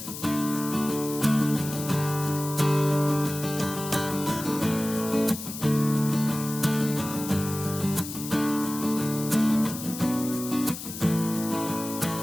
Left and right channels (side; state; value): left; noise; hiss, 9 dB below the sound